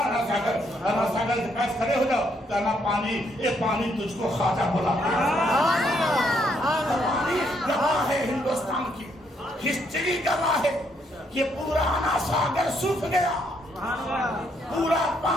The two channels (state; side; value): normal; both; correlation 0.73